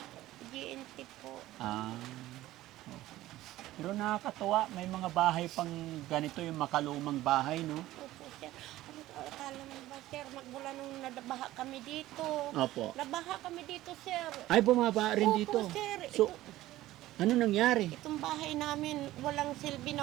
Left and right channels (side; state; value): left; quieter; 15.7 dB